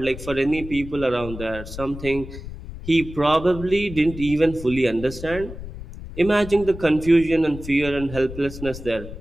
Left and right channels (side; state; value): left; noise; rumble, 12 dB below the sound